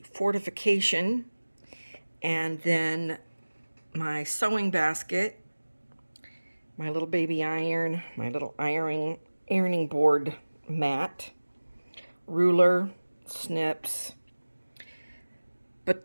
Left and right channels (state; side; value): inverted; both; correlation -1.00